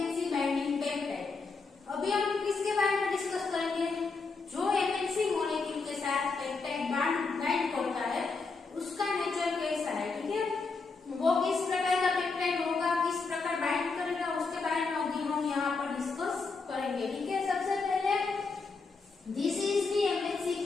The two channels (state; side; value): quieter; right; 4.3 dB